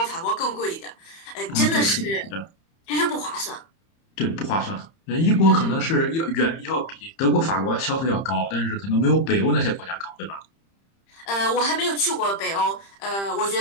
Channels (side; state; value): right; late; 30 ms